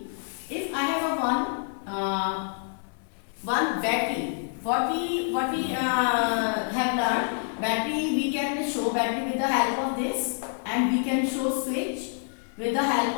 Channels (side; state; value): right; silent; digital silence